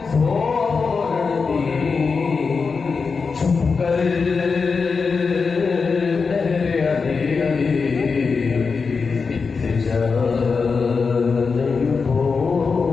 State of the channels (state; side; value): quieter; right; 5.0 dB